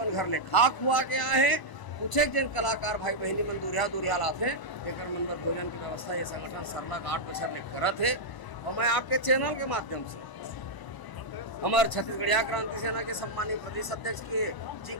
घर ले खा खुआ के आए हैं। कुछ एक जन कलाकार भाई बहनी मन दूरिया लाते हैं, जेकर मन बर भोजन की व्यवस्था ये संगठन सरलग 8 बछर ले करत है। और मैं आपके चैनल के माध्यम से हमारे छत्तीसगढ़िया क्रांति सेना के सम्मानित प्रदेश अध्यक्ष जी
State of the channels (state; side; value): late; right; 1.0 ms